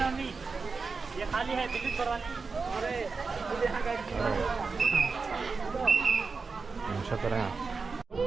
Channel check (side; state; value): left; quieter; 4.6 dB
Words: ये खाली है बिल्ली थोड़ा नहीं।